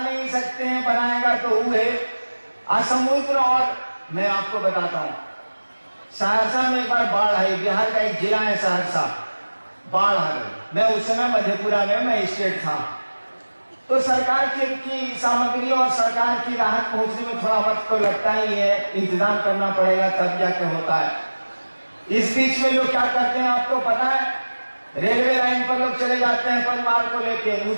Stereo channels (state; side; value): inverted; both; correlation -1.00